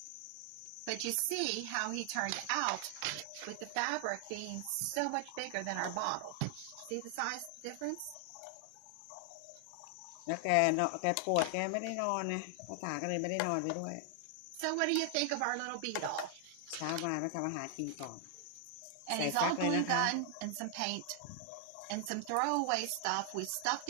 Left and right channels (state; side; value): different; both; correlation 0.00